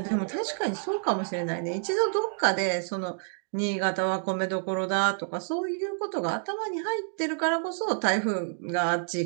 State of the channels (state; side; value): silent; left; digital silence